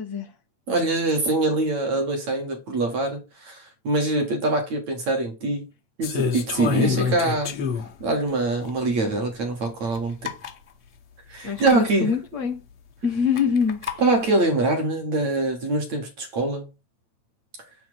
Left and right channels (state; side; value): late; left; 9.0 ms